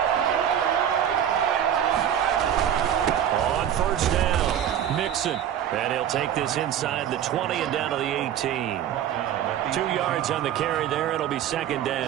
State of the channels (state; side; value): quieter; left; 10.1 dB